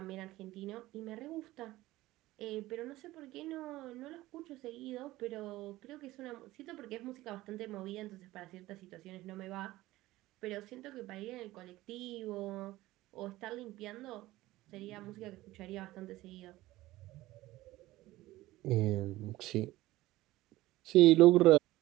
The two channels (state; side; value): quieter; left; 17.4 dB